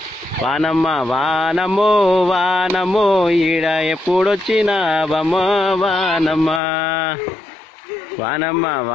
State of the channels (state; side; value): drops out; right; at 6.6 s